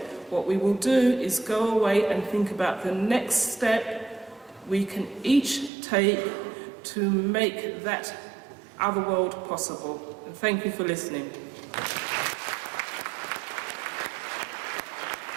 What we will do is go away and think about the next step we can each take to make that other world possible. And thank you for listening.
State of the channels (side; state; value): left; drops out; at 5.7 s